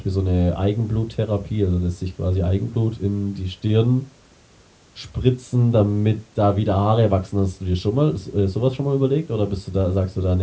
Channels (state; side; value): identical; both; correlation 1.00